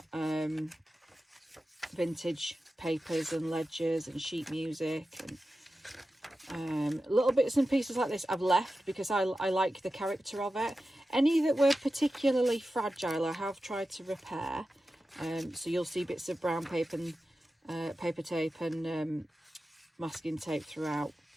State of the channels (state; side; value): normal; both; correlation 0.93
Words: vintage papers and ledgers and sheet music, and little bits and pieces like this I've left because I like the character of it. Any that were particularly fragile I have tried to repair. So you'll see bits of brown paper and paper tape and masking tape throughout.